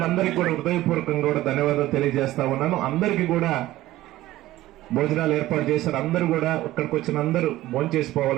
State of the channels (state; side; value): quieter; left; 16.0 dB